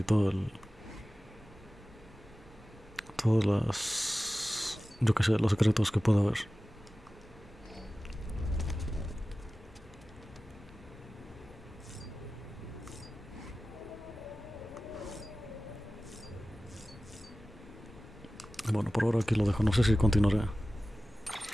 todas las... yo qué sé, los secretos que pueda haber. Bueno, por ahora aquí lo dejo. No sé si continuaré.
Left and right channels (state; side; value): normal; both; correlation 0.96